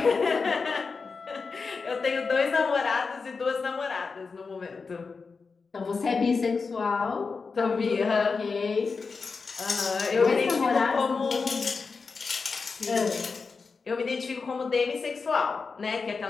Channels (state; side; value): quieter; right; 4.7 dB